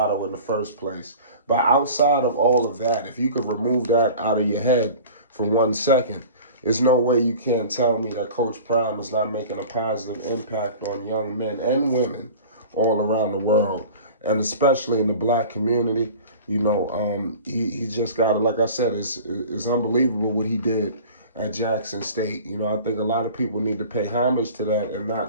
in the first place. But outside of all of that, if you could remove that out of your head for 1 second, there's no way you can't tell me that Coach Prime is not making a positive impact on young men and women all around the world, and especially in the black community. You know, he just got it. Like I said, it's unbelievable what he did at Jackson State. You know, I think a lot of people need to pay homage to that and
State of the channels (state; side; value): inverted; both; correlation -0.40